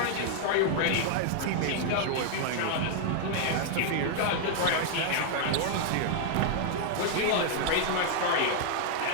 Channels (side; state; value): both; different; correlation 0.00